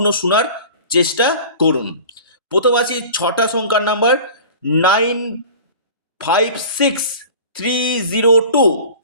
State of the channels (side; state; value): both; inverted; correlation -0.40